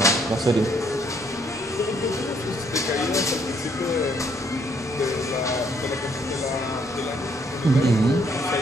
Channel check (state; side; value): normal; both; correlation 0.68